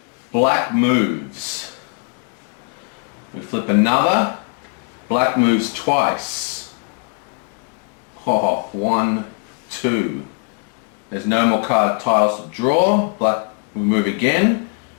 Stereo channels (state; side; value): quieter; right; 39.8 dB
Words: black moves. We flip another, black moves twice. 1, 2. There's no more card tiles to draw. Black, we move again.